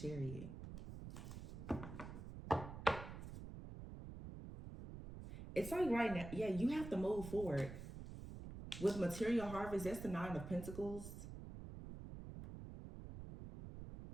It's like right now, yeah, you have to move forward. With material harvest, that's the 9 of Pentacles.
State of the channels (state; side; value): noise; right; rumble, 10 dB below the sound